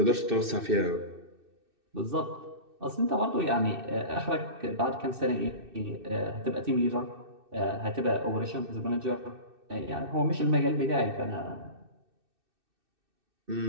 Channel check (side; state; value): left; late; 2.6 ms